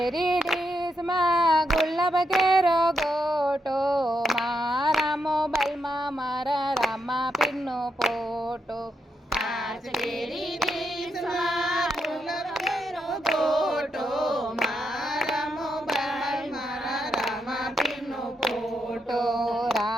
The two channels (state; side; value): normal; both; correlation 0.81